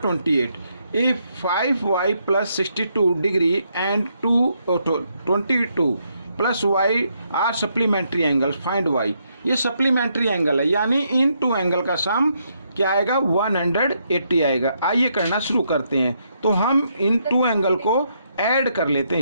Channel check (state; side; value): inverted; both; correlation -0.76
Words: इफ 5y + 62 degree and 22 + y are supplementary angles, find y। ये सप्लीमेंट्री एंगल है, यानी इन 2 एंगल का सम क्या आएगा, 180 आएगा। आइए करना शुरू करते हैं। तो हम इन 2 एंगल को ऐड कर लेते हैं